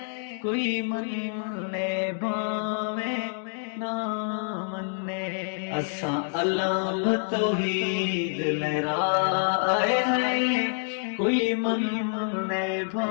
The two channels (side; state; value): right; silent; 60 dB below the other